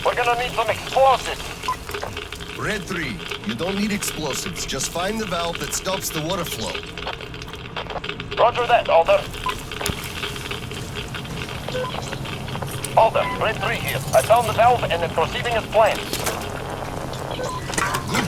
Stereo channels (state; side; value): identical; both; correlation 1.00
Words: gonna need some explosives. Red 3, you don't need explosives. Just find the valve that stops the water flow. Roger that, Alder. Alder, Red 3 here. I found the valve and it's proceeding as planned. Good